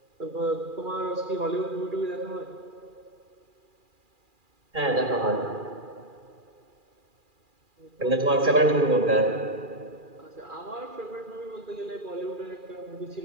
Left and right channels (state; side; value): late; left; 2.4 ms